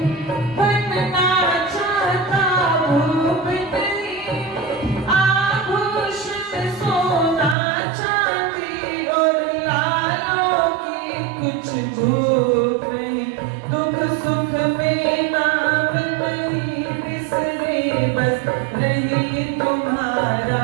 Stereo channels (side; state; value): left; drops out; at 7.6 s